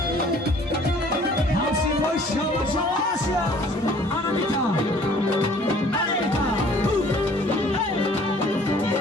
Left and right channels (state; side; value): normal; both; correlation 0.54